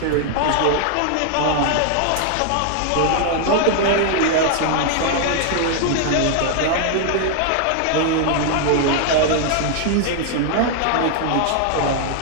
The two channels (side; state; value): both; different; correlation 0.00